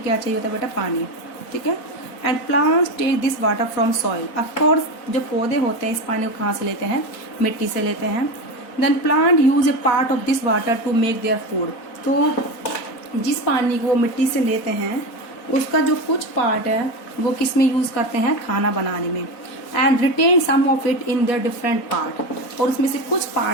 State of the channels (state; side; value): late; right; 4.2 ms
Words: क्या चाहिए होता है बेटा? पानी, ठीक है। And plants take this water from soil. Of course जो पौधे होते हैं इस पानी को कहाँ से लेते हैं? मिट्टी से लेते हैं। Then plant use a part of this water to make their food. तो जिस पानी को वो मिट्टी से लेते हैं उसका जो कुछ पार्ट है वो किस में यूज करते हैं? खाना बनाने में। And retain some of it in their different part. और उसमें से कुछ